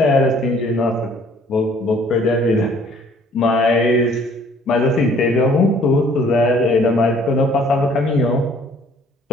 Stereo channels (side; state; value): both; normal; correlation 0.57